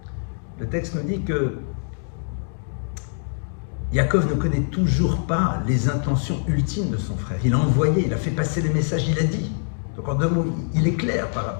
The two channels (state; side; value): silent; right; digital silence